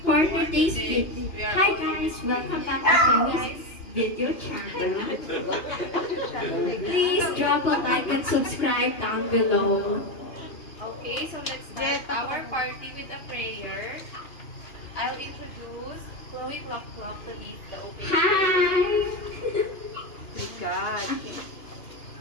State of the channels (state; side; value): late; right; 2.8 ms